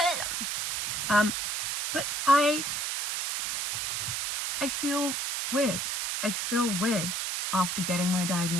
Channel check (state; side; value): noise; right; hiss, 1 dB below the sound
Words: but I feel weird. I feel weird after getting my